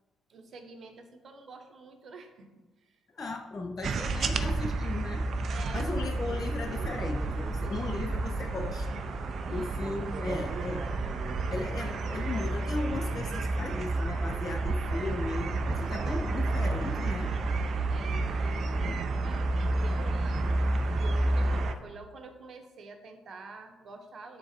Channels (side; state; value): both; normal; correlation 0.88